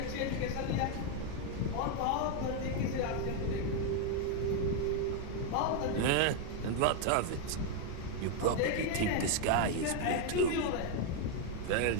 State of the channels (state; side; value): different; both; correlation 0.01